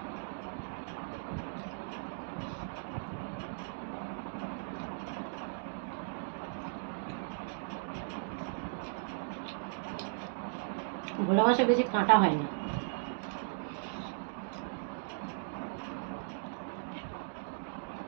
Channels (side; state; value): left; silent; digital silence